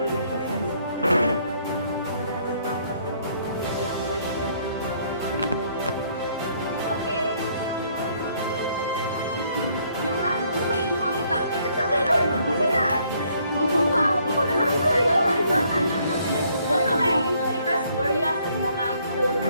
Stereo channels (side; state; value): both; inverted; correlation -0.66